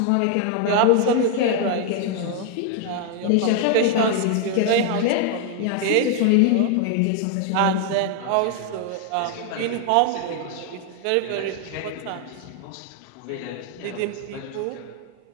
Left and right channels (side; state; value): both; different; correlation 0.00